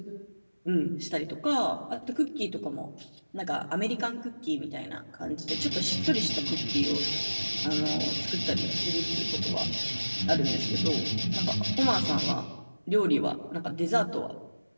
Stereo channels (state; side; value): inverted; both; correlation -1.00